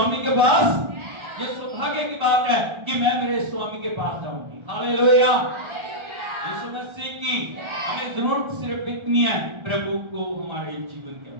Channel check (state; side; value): late; left; 1.4 ms